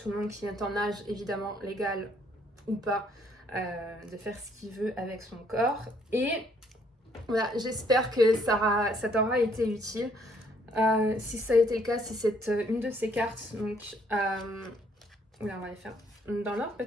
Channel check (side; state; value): both; normal; correlation 0.66